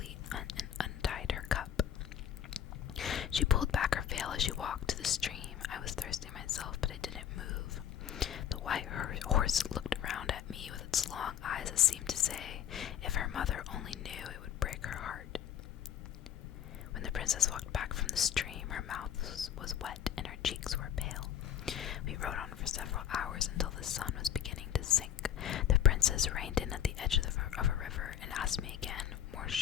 and untied her cup. She pulled back her veil as she walked to the stream. I was thirsty myself, but I didn't move. The white horse looked around at me with its long eyes that seemed to say, if her mother only knew, it would break her heart. When the princess walked back from the stream, her mouth was wet and her cheeks were pale. We rode on for several hours until the sun was beginning to sink. The princess reined in at the edge of a river and asked me again, more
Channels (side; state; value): right; quieter; 9.7 dB